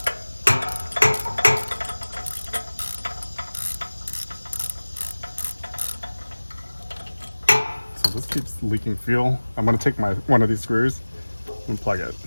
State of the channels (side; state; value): both; inverted; correlation -1.00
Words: So this keeps leaking fuel. I'm gonna take one of these screws and plug it.